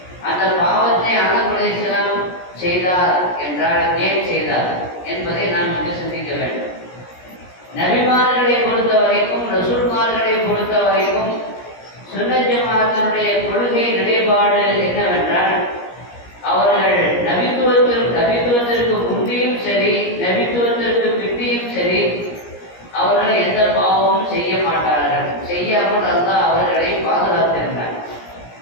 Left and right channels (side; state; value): right; late; 17 ms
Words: அந்த பாவத்தை ஆதம் அலைஹிஸ்ஸலாம் செய்தார் என்றால் ஏன் செய்தார் என்பதை நாம் இங்கு சிந்திக்க வேண்டும். நபிமார்களை பொறுத்த வரைக்கும், ரசூல்மார்களை பொறுத்த வரைக்கும் சுன்னத் ஜமாஅத்தினுடைய கொள்கை நிலைப்பாடு என்னவென்றால், அவர்கள் நபித்துவத்திற்கு முந்தியும் சரி, நபித்துவத்திற்கு பிந்தியும் சரி, அவர்கள் எந்த பாவமும் செய்ய மாட்டார்கள். செய்யாமல் அல்லாஹ் அவர்களை பாதுகாத்திருந்தார்.